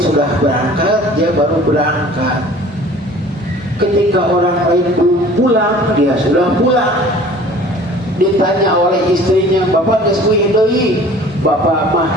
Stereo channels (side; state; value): both; normal; correlation 0.47